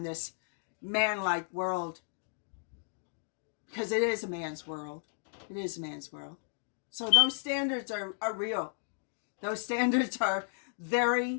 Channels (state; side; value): silent; right; digital silence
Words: this man-like world. Because it is a man's world. It is a man's world. So those standards are real. Those standards are